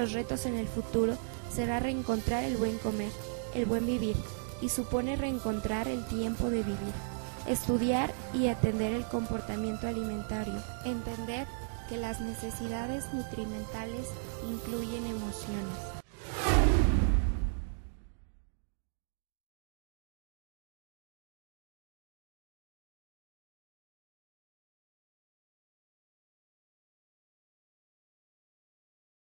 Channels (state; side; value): silent; left; digital silence